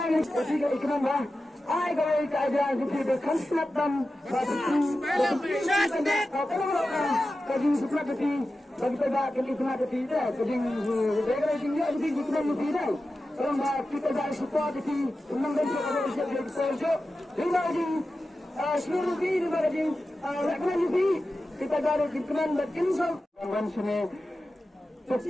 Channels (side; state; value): both; normal; correlation 0.93